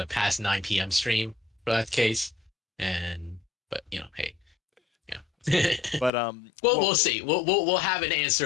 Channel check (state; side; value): drops out; right; at 6.1 s